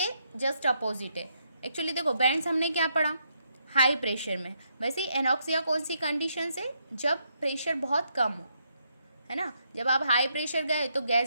जस्ट अपोजिट है। एक्चुअली देखो बैंड्स हमने क्या पढ़ा, हाई प्रेशर में, वैसे ही एनॉक्सिया कौन सी कंडीशन से, जब प्रेशर बहुत कम हो, है ना। जब आप हाई प्रेशर गए तो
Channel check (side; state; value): both; inverted; correlation -0.77